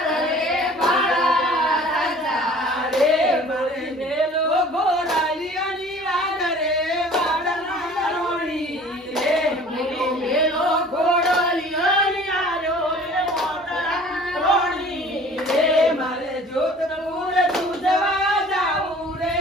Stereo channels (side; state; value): both; normal; correlation 0.48